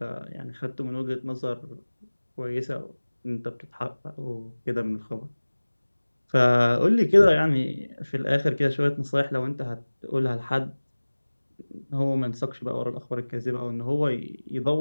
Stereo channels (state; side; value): inverted; both; correlation -1.00